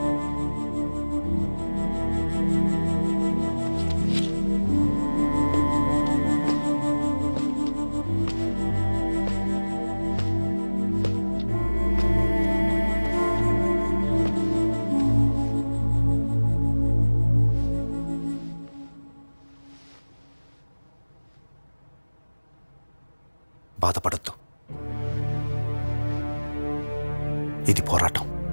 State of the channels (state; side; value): inverted; both; correlation -1.00